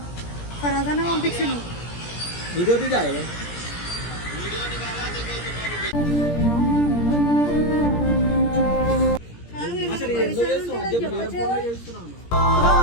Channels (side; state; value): right; late; 17 ms